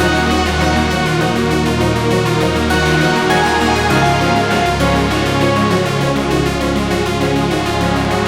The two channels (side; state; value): both; identical; correlation 1.00